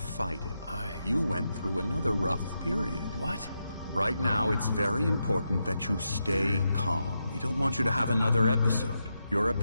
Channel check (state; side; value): inverted; both; correlation -0.85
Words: it. You went through another rough period. What? Right now, it's very important that you stay calm. We don't want you to have another episode. You're a